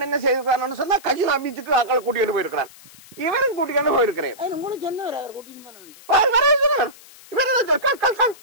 என்ன செய்திருக்கான்னு சொன்னா கஜினா பீச்சுக்கு ஆக்களை கூட்டிட்டு போயிருக்கிறான் இவரும் கூட்டிட்டு போயிருக்கிறேன்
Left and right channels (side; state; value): left; noise; hiss, 22 dB below the sound